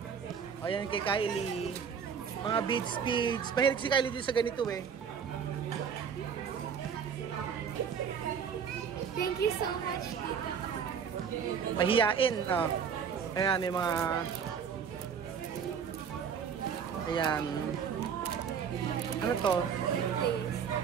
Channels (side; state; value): left; quieter; 7.1 dB